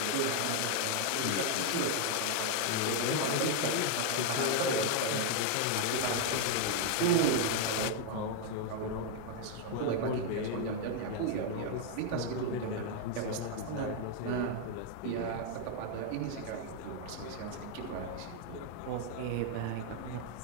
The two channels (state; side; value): different; both; correlation 0.00